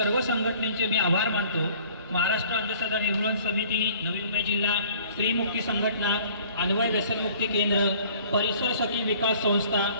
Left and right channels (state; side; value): inverted; both; correlation -0.53